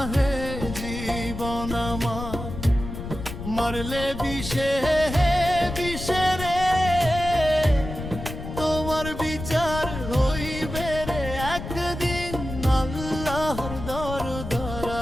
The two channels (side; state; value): left; noise; rumble, 8 dB below the sound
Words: হে জীবন আমার, মারলে বিষে বিষে রে, তোমার বিচার হইবে রে একদিন আল্লাহর